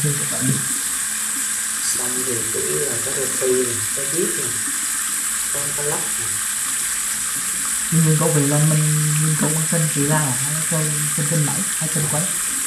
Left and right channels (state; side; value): identical; both; correlation 1.00